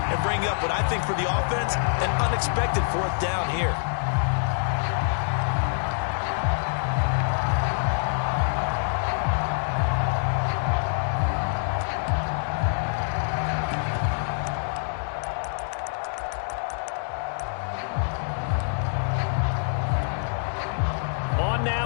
and bring up what I think for the offense, an unexpected 4th down here.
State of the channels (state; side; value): silent; right; digital silence